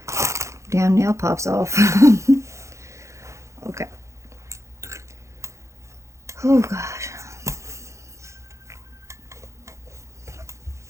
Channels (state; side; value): late; left; 0.14 ms